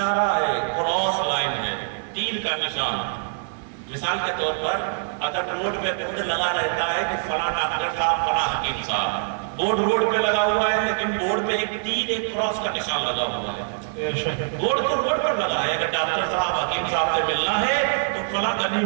ہے, کراس لائن ہے, تیر کا نشان. مثال کے طور پر اگر روڈ پہ بورڈ لگا رہتا ہے کہ فلاں ڈاکٹر صاحب, فلاں حکیم صاحب, بورڈ روڈ پہ لگا ہوا ہے لیکن بورڈ پہ ایک تیر, ایک کراس کا نشان لگا ہوا ہے. بورڈ تو روڈ پر لگا ہے, اگر ڈاکٹر صاحب حکیم صاحب سے ملنا ہے تو فلاں گلی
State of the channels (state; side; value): silent; left; 63 dB below the other